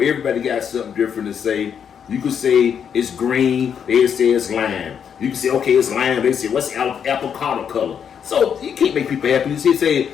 Everybody got something different to say. You could say it's green. They say it's lime. You can say okay, it's lime. They say what's avocado color. So you can't make people happy. You say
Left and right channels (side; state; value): right; quieter; 7.8 dB